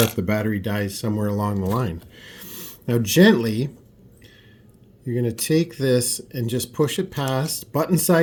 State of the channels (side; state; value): both; identical; correlation 1.00